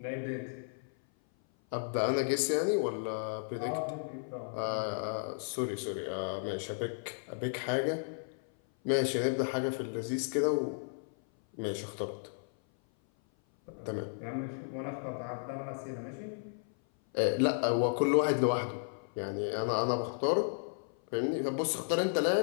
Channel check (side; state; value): right; silent; 55 dB below the other